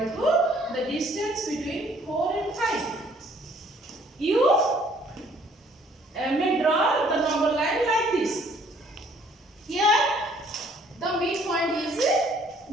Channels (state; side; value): normal; both; correlation 0.60